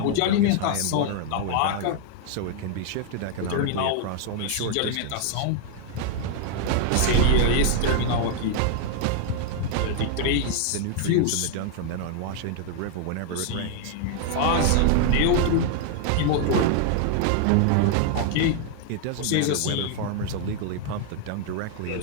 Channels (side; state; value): both; different; correlation 0.00